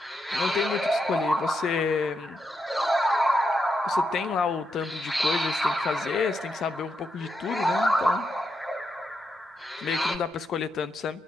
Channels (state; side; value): normal; both; correlation 0.82